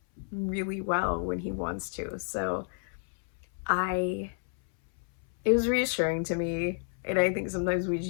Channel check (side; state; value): right; silent; 58 dB below the other